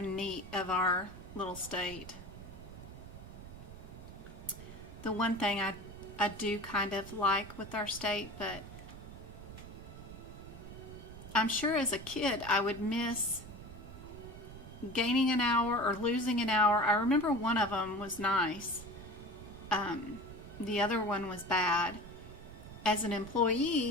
neat of our little state. The one thing I do kind of like with our state, but I'm sure as a kid I would miss gaining an hour or losing an hour. I remember one of them was nice. The other one was bad. As an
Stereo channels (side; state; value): right; noise; rumble, 14 dB below the sound